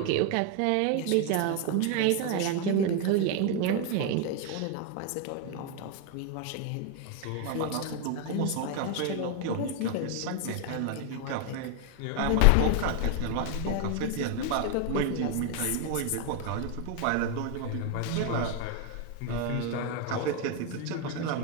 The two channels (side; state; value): both; different; correlation 0.01